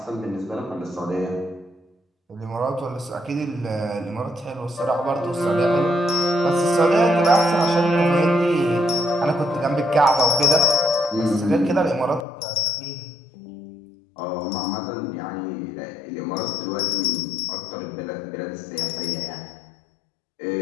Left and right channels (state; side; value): drops out; right; at 12.2 s